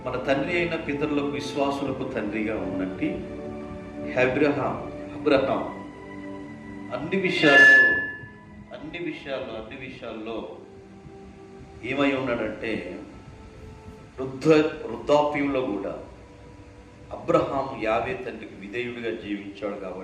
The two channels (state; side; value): identical; both; correlation 1.00